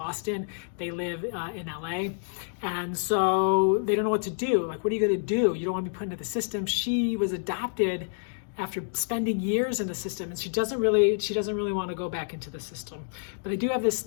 They live in LA. And so they don't know what to do. What are you gonna do? You don't want to be put into the system. She was adopted after spending years in the system, and she doesn't really want to go back into the system. But they do have this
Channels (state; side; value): silent; right; digital silence